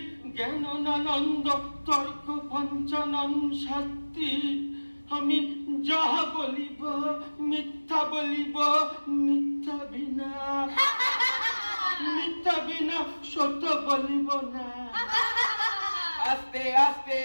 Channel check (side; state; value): both; inverted; correlation -1.00